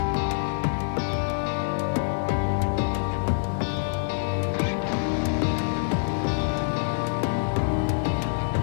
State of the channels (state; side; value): silent; right; digital silence